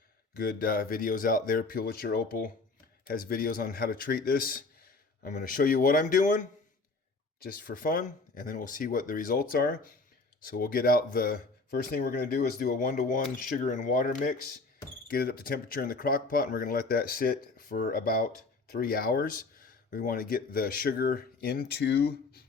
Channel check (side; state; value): right; quieter; 3.7 dB